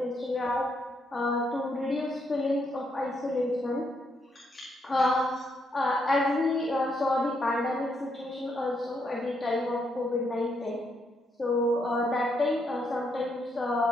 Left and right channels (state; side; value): normal; both; correlation 0.77